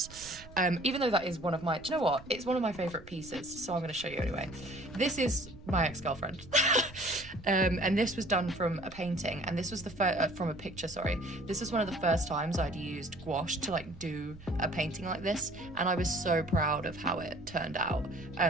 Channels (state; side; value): noise; right; rumble, 18 dB below the sound